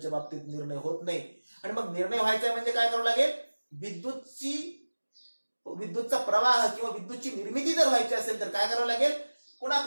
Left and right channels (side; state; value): both; inverted; correlation -1.00